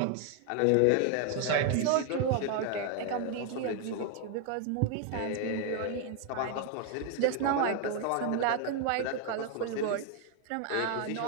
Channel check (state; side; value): different; both; correlation 0.00